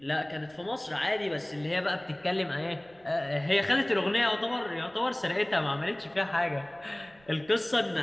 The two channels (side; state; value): right; noise; rumble, 30 dB below the sound